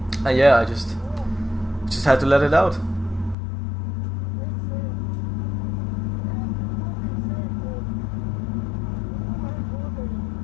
and yeah, I just had to let it out.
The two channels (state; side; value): drops out; right; at 3.4 s